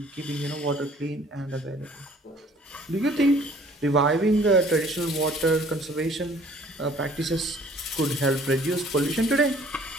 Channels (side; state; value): both; normal; correlation 0.55